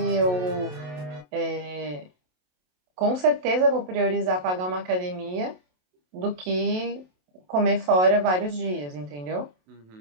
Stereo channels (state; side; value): late; left; 27 ms